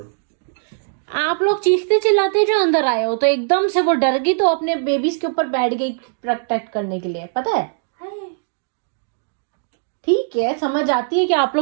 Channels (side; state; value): left; silent; digital silence